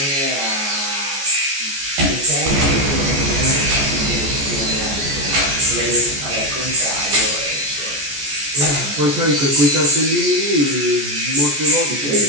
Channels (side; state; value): left; late; 14 ms